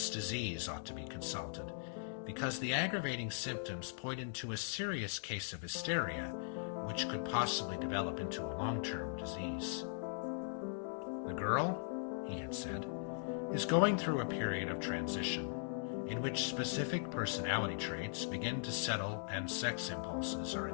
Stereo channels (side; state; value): right; silent; digital silence